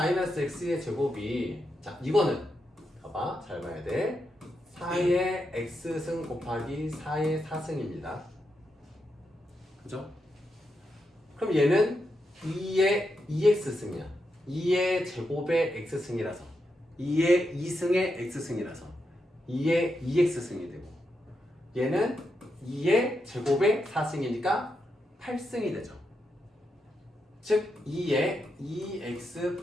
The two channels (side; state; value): both; normal; correlation 0.84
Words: x의 제곱이, 자, 이거는 봐봐, 잘 봐야 돼. 4의 x승 곱하기 4의 4승입니다. 그죠? 그럼 얘는 2의 2x승이야. 2의 제곱의 x승이라서, 2의 2승의 x승이라서 2의 2x승이 되고, 얘는 2의 제곱의 4승이니까 8승이 되죠. 즉 2의 2x